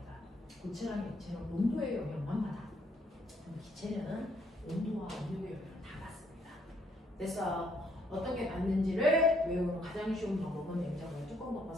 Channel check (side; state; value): both; normal; correlation 0.69